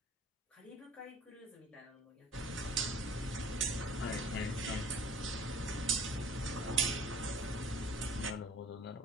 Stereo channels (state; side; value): normal; both; correlation 0.48